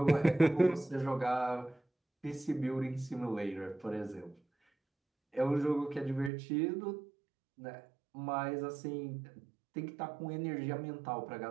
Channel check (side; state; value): left; drops out; at 6.3 s